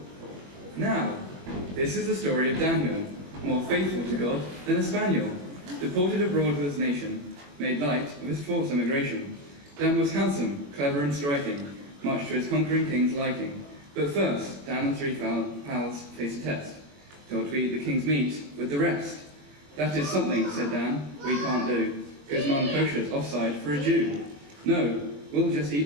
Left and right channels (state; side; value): late; left; 21 ms